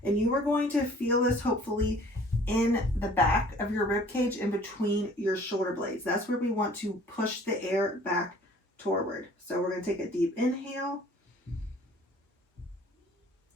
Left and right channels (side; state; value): both; normal; correlation 0.52